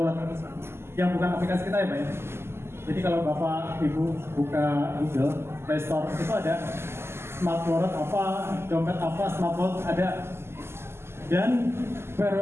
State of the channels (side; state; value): left; late; 0.12 ms